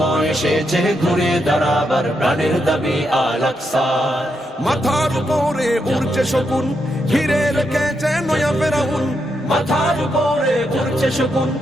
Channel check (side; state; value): both; normal; correlation 0.82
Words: এসেছে ঘুরে দাঁড়াবার প্রাণের দাবি আল আকসা। মাথার উপরে উড়ছে শকুন, ঘিরে রেখেছে নয়া ফেরাউন। মাথার উপরে উড়ছে শকুন,